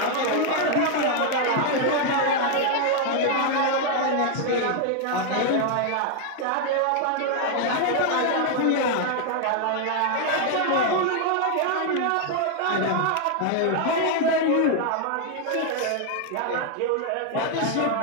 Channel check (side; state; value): both; different; correlation 0.00